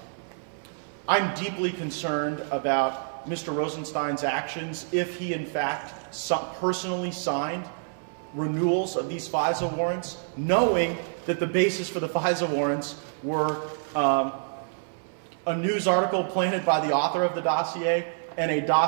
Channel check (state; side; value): silent; left; 60 dB below the other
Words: I'm deeply concerned about Mr. Rosenstein's actions if he, in fact, personally signed renewals of these FISA warrants, knowing that the basis for the FISA warrants were a news article planted by the author of the dossier and a